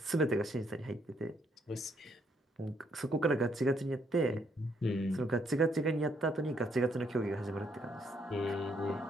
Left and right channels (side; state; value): both; normal; correlation 0.72